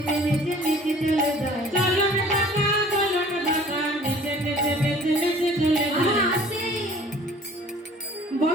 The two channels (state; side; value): normal; both; correlation 0.50